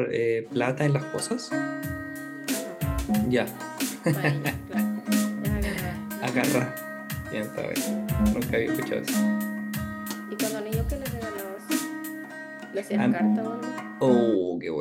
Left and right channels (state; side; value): identical; both; correlation 1.00